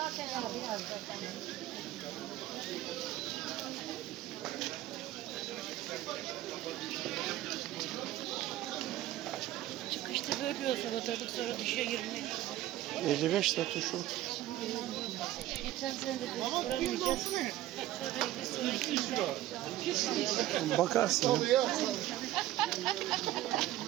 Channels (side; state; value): left; quieter; 14.5 dB